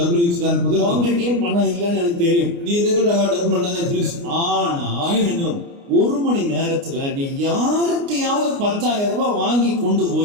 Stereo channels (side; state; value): left; late; 29 ms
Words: ఇచ్చడానికి కుదరదు, அவங்ககிட்டயும் பணம் இல்லைன்னு எனக்கு தெரியும், నీ దగ్గర డబ్బులు ఉండదని తెలుసు. ஆனா ఆయన 1 மணி நேரத்துல நீ யாருக்கையாவது 10,000 ரூபாய் வாங்கி கொண்டு